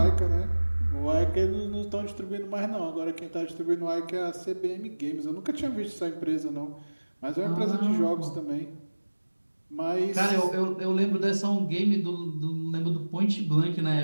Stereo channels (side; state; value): both; inverted; correlation -1.00